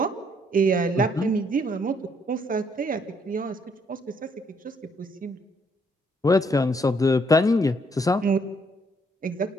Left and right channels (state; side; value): normal; both; correlation 0.69